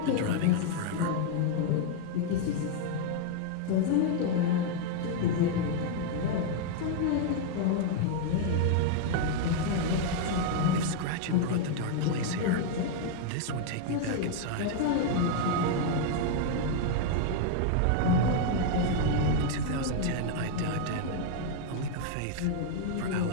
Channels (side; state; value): both; different; correlation 0.00